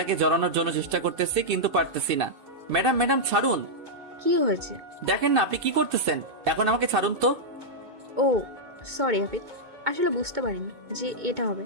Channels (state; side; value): late; left; 2.6 ms